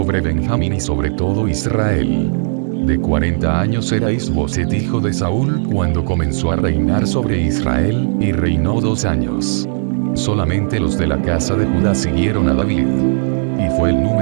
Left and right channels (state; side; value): silent; left; 69 dB below the other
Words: Benjamín y sobre todo Israel. De 40 años era Is-Boset hijo de Saúl cuando comenzó a reinar sobre Israel, y reinó 2 años. Solamente los de la casa de Judá siguieron a David. Y fue el